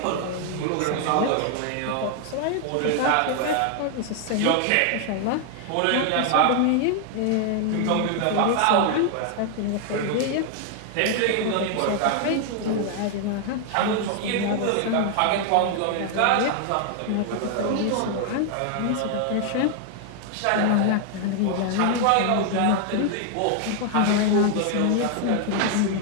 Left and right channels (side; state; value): both; different; correlation 0.00